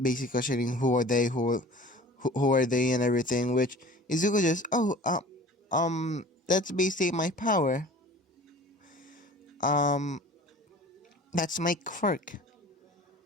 Basically questioning who are they and everything. Which Izuku just, that's basically my power. That's my quirk.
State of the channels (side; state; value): both; normal; correlation 0.43